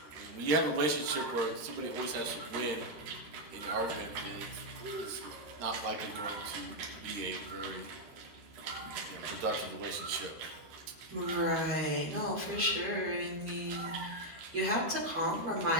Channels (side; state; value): left; late; 13 ms